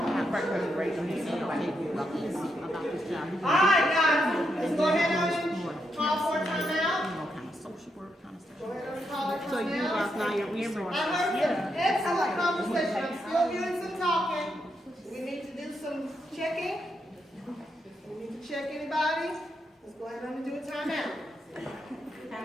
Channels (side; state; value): both; normal; correlation 0.81